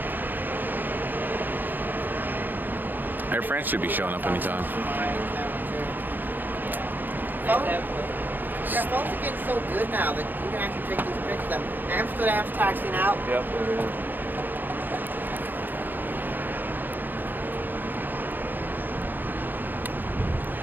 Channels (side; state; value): left; late; 0.089 ms